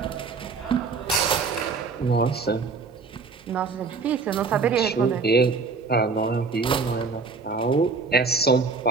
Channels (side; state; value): left; quieter; 4.6 dB